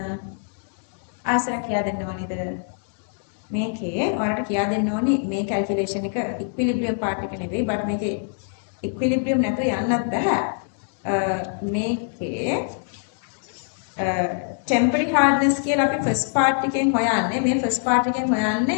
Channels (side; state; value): right; silent; digital silence